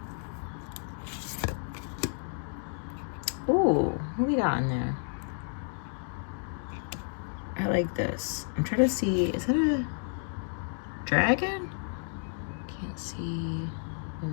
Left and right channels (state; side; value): silent; right; 57 dB below the other